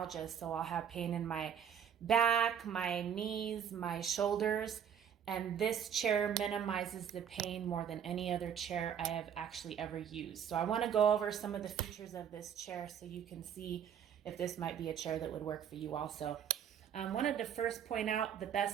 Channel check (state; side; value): quieter; left; 8.4 dB